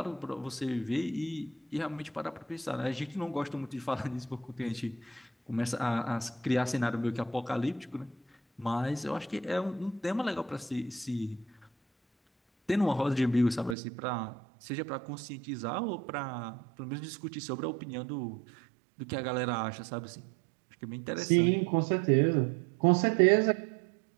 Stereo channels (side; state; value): left; drops out; at 13.8 s